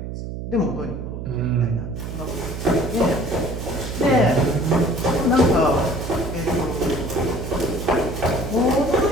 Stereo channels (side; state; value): right; noise; hum, 7 dB below the sound